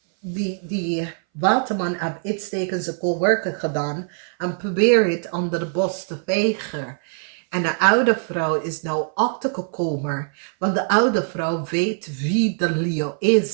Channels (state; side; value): silent; left; 61 dB below the other